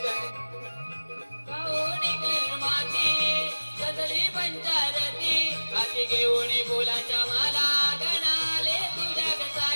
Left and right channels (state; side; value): inverted; both; correlation -1.00